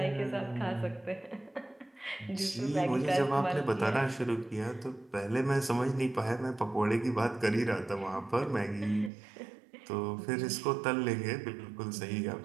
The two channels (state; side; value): drops out; left; at 9.1 s